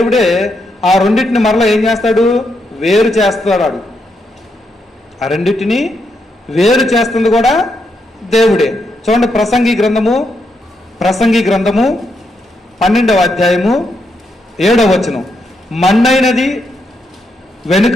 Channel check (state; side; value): normal; both; correlation 0.80